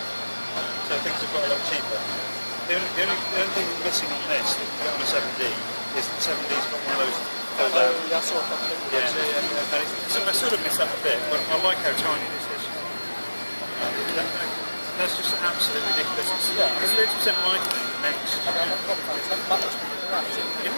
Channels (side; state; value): both; inverted; correlation -1.00